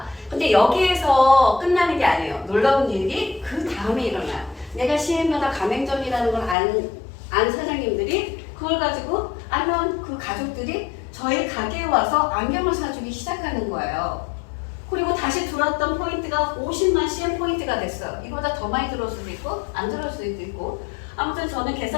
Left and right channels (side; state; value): right; drops out; at 6.6 s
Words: 근데 여기에서 끝나는 게 아니에요. 놀라운 일이 그 다음에 일어나요. 내가 CM마다 가맹점이라는 걸 안 사장님들이 그걸 가지고 아니면 그 가족들이 저희 가게에 와서 안경을 사주기 시작하는 거예요. 그리고 다시 들어왔던 포인트가 50만 CM 포인트가 됐어요. 이거보다 더 많이 들어올 수도 있고 안 들어올 수도 있고, 아무튼 저는